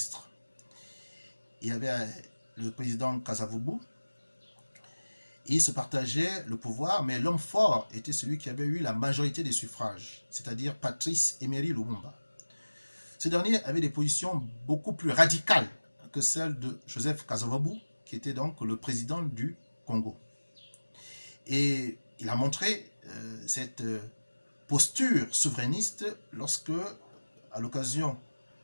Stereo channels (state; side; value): inverted; both; correlation -1.00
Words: Il y avait le président Kasavubu, et ils se partageaient le pouvoir, mais l'homme fort était celui qui avait eu la majorité des suffrages, c'est-à-dire Patrice Emery Lumumba. Ce dernier avait des positions beaucoup plus radicales que celles de Joseph Kasavubu, qui était donc le président du Congo. Et il a montré cette posture souverainiste lorsque, à l'occasion